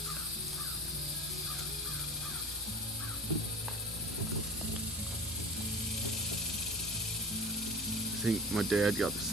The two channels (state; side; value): normal; both; correlation 0.37